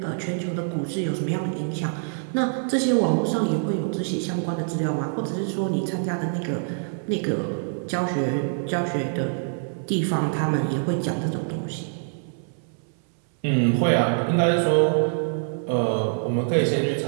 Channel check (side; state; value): left; silent; 62 dB below the other